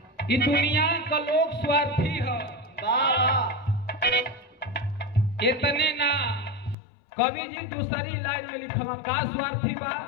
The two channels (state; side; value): drops out; right; at 6.8 s